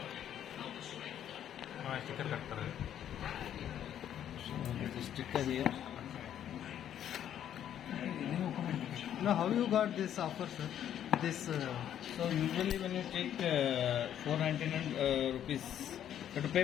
हाँ sticker cut कर Sticker here. Now, how you got this offer, sir? This So usually when you take 499 rupees, you have to pay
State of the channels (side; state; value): right; quieter; 10.3 dB